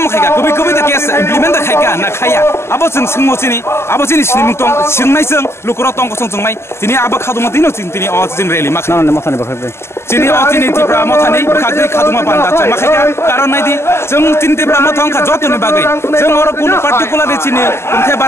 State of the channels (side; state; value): right; late; 0.12 ms